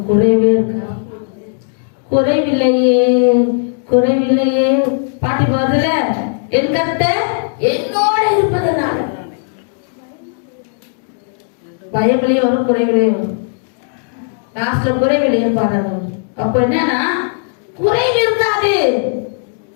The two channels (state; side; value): silent; right; digital silence